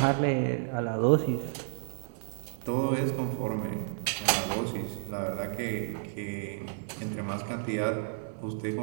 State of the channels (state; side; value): silent; left; digital silence